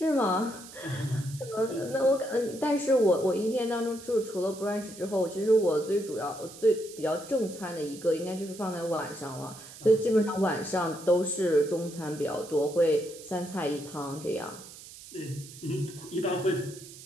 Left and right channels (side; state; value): right; noise; hiss, 16 dB below the sound